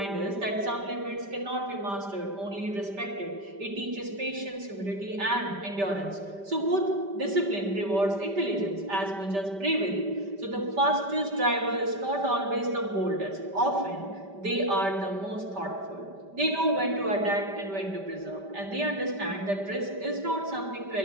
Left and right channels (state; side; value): late; left; 5.1 ms